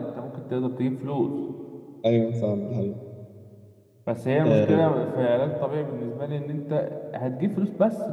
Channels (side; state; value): both; identical; correlation 1.00